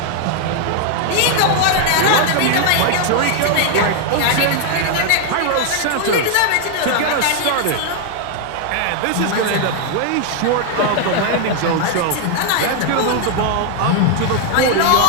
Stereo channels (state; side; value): different; both; correlation 0.00